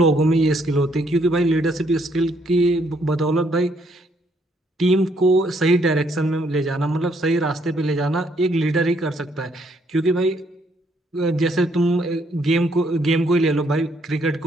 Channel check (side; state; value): both; normal; correlation 0.70